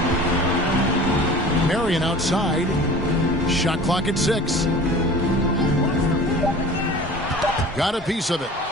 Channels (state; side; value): normal; both; correlation 0.41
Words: Marion outside. Shot clock at 6. Got a piece of it.